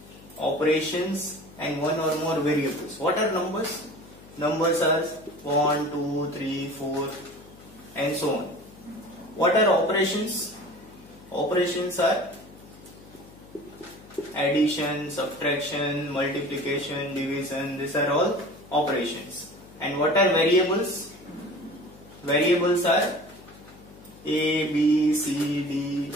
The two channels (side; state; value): left; noise; hum, 21 dB below the sound